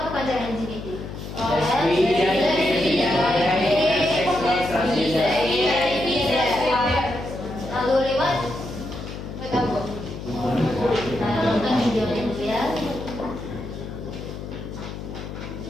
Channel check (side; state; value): left; noise; hum, 9 dB below the sound